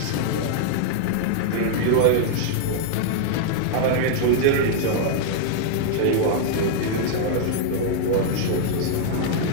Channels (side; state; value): both; different; correlation -0.01